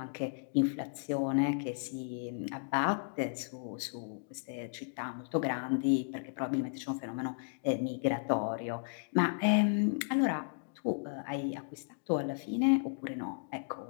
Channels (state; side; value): silent; right; digital silence